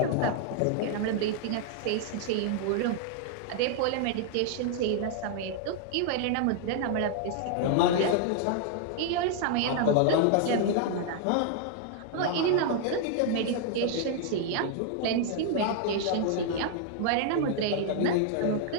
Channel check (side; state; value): both; different; correlation 0.00